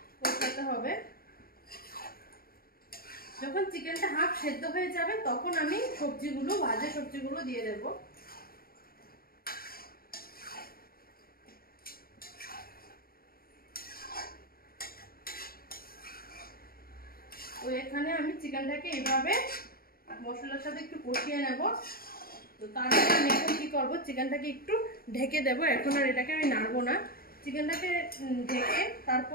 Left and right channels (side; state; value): right; late; 0.43 ms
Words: কষাতে হবে। যখন চিকেনটা হাফ সেদ্ধ হয়ে যাবে তখন আমি সবজিগুলো, ভাজা সবজিগুলো দিয়ে দেব। তো এখানে আমি চিকেনটাকে এইভাবে মশলার সাথে একটু কষিয়ে নেব। তো তারপরে আমি এখন কি করব, চিকেনটাকে একটু ঢেকে দেব। এখন আর এটাকে আমি নাড়বো না। চিকেনটাকে ঢেকে